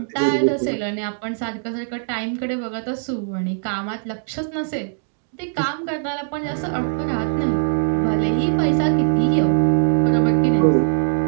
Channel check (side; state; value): left; silent; digital silence